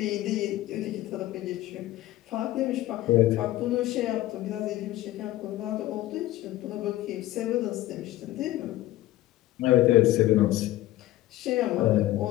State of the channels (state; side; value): quieter; right; 15.7 dB